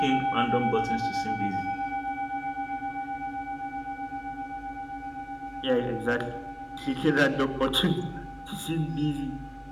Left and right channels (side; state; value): both; identical; correlation 1.00